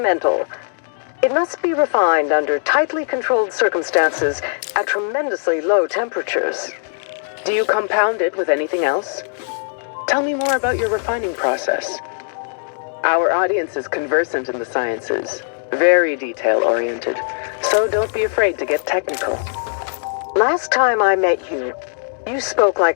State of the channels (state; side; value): silent; right; 66 dB below the other